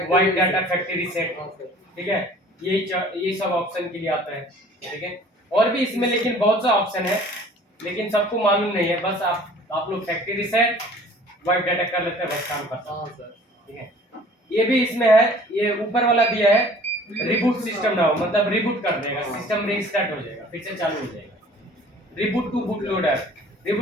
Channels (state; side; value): normal; both; correlation 0.50